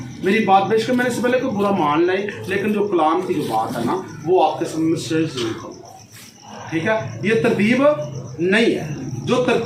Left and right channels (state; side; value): identical; both; correlation 1.00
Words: मेरी बात बेशक मैंने इससे पहले कोई बुरा मान लाई, लेकिन जो कलाम की जो बात है ना, वो आपके सामने शेयर जरूर करूँगा, ठीक है? ये तरतीब नहीं है। जो